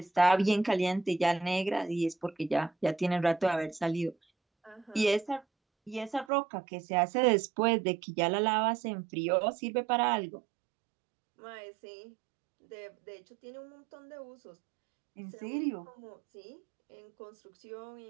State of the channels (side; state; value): left; drops out; at 6.2 s